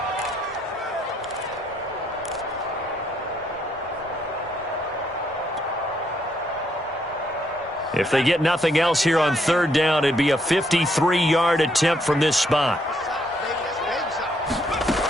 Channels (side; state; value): both; normal; correlation 0.73